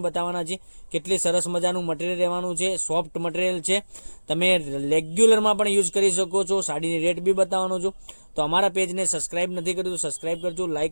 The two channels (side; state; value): both; inverted; correlation -1.00